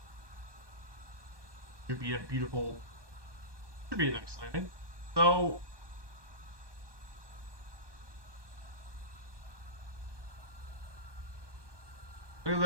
Should be a nice landing. So, look at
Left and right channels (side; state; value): left; late; 1.2 ms